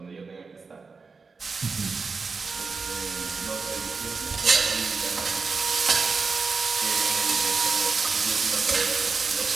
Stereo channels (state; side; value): quieter; left; 4.6 dB